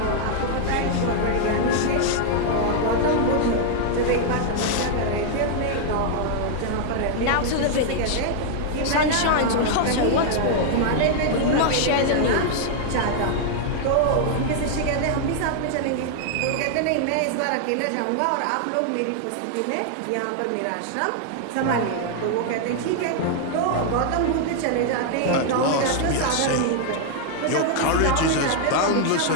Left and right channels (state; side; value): different; both; correlation 0.00